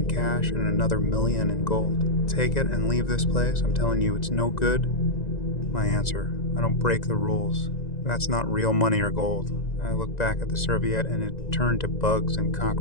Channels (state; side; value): late; right; 1.9 ms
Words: cash and another million in gold. Take it and leave this place. I'm telling you, it's no good. My answer, I don't break the rules. That's not real money or gold. I looked back at the serviette and it turned to bugs and